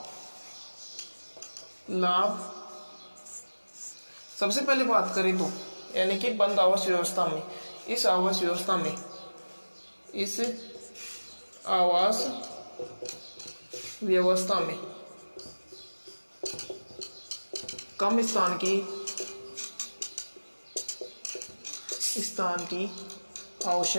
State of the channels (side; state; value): both; inverted; correlation -1.00